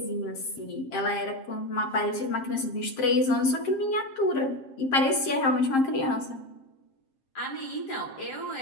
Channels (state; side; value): late; right; 7.5 ms